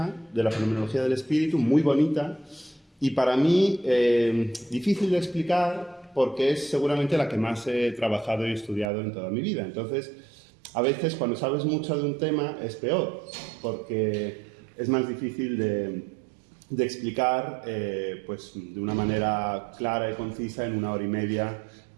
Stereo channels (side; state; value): left; drops out; at 8.9 s